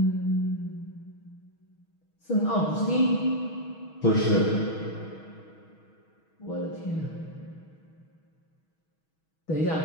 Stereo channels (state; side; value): late; right; 6.3 ms